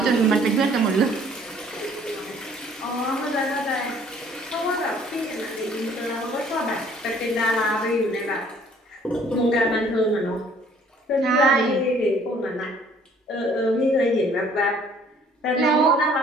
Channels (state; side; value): normal; both; correlation 0.57